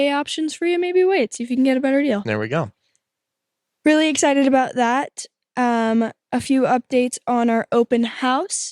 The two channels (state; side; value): identical; both; correlation 1.00